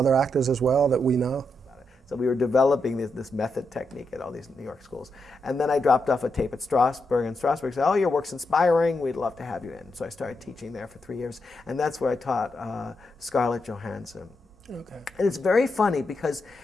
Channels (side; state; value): both; normal; correlation 0.84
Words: actors as well that we know? So we were developing this method technique at all these New York schools. And then I dropped off a tape at Strasberg, and Strasberg said, oh, your work's inspiring, we'd love to have you in. So I started teaching there for 3 years, and that's where I taught Scarlett Johansson. Okay. And it's very funny, because